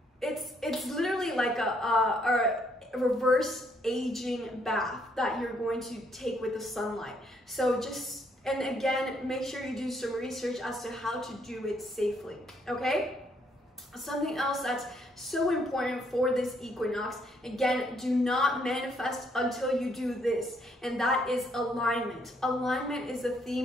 it's literally like a reverse aging bath that you're going to take with the sunlight. So just, and again, make sure you do some research as to how to do it safely, okay? Something else that's so important for this equinox, again, do not manifest until you do this, and that is alignment. Alignment is the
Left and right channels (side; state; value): both; normal; correlation 0.70